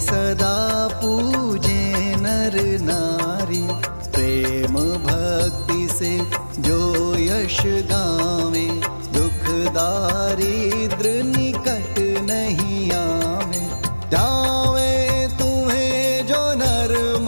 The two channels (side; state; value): both; inverted; correlation -1.00